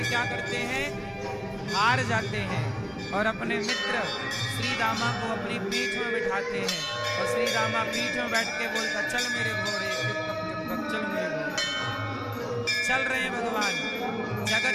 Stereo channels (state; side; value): identical; both; correlation 1.00